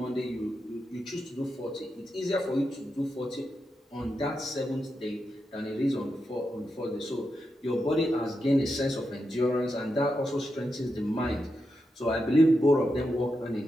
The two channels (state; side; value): normal; both; correlation 0.87